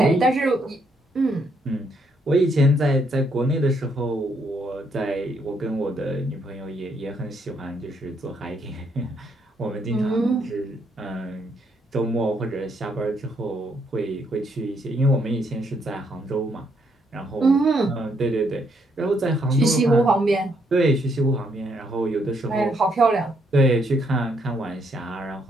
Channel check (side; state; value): both; normal; correlation 0.73